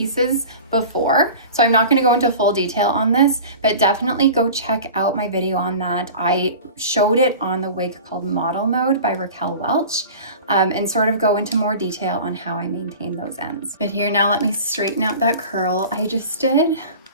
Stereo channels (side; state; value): both; inverted; correlation -0.38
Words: before, so I'm not gonna go into full detail on this, but definitely go check out my video on that. I showed it on the wig called Model Mode by Raquel Welch, and sort of go into more detail on how I maintain those ends. But here, now let me straighten out that curl I just did,